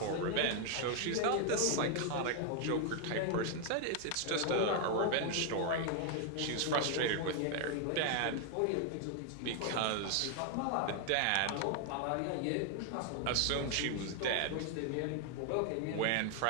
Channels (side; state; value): both; different; correlation 0.00